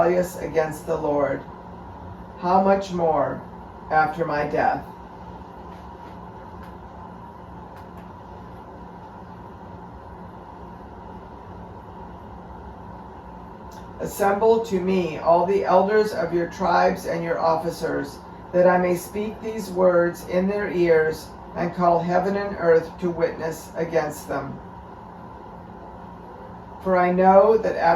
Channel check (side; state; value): both; identical; correlation 1.00